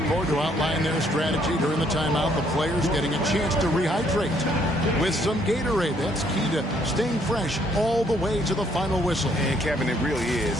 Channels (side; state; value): both; normal; correlation 0.67